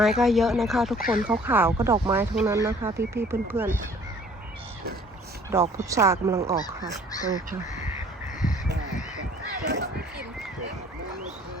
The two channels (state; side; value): normal; both; correlation 0.54